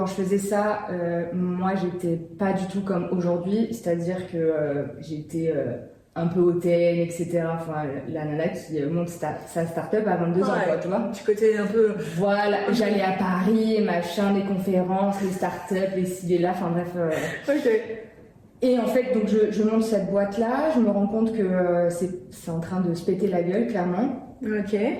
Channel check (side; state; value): both; identical; correlation 1.00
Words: je faisais ça, moi j'étais pas du tout comme aujourd'hui. C'est-à-dire que j'étais un peu hautaine, etc. Enfin, la nana qui monte sa start-up à 22 ans, quoi, tu vois. Du côté un peu... Voilà, j'allais à Paris, machin, des conférences, les start-up, les ci, les là, enfin bref. Ok. Et en fait, donc je monte cette boîte-là, je me rends compte que c'est en train de se péter la gueule, clairement. Ok.